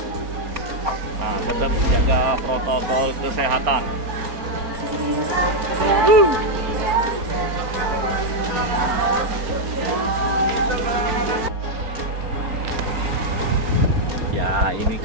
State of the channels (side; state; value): left; late; 4.3 ms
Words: Nah, tetap jaga protokol kesehatan. Ya, ini